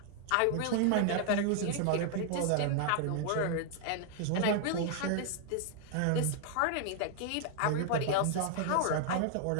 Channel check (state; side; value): different; both; correlation 0.00